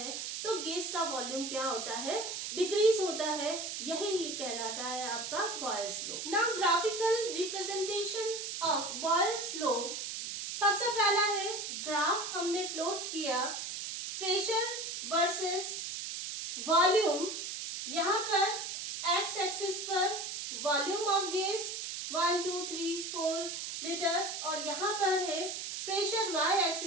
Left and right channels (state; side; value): noise; right; hiss, 5 dB below the sound